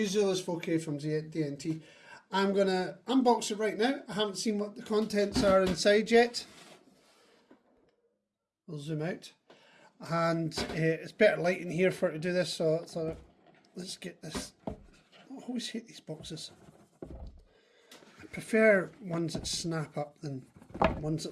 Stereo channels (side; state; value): both; identical; correlation 1.00